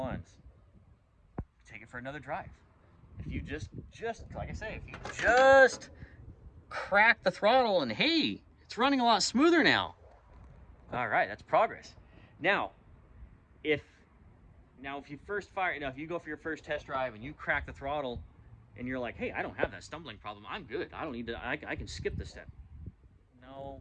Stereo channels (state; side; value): identical; both; correlation 1.00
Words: Take it for another drive. If you just like I say, if you just crack the throttle and hey, it's running a lot smoother now. All right, that's progress. Now, if you first fire, if you go for your first test drive and you crack the throttle and you're like, hey, I don't have that stumbling problem, I'm good, I don't need to, I can skip this step.